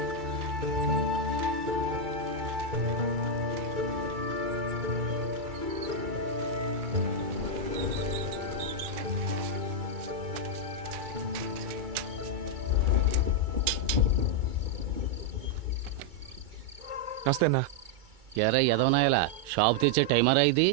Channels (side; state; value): left; late; 2.3 ms